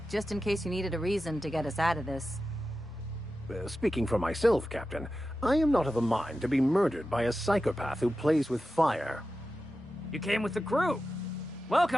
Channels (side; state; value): both; normal; correlation 0.92